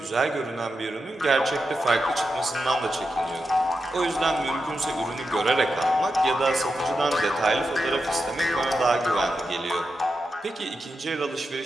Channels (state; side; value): normal; both; correlation 0.88